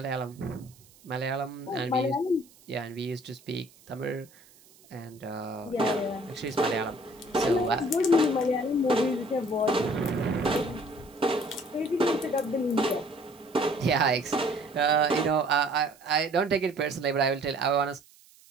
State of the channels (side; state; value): right; noise; hiss, 27 dB below the sound